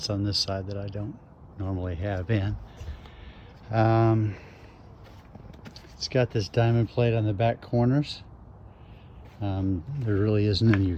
on this side that I don't normally have in. It's got this diamond plate on the back corners. There really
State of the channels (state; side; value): identical; both; correlation 1.00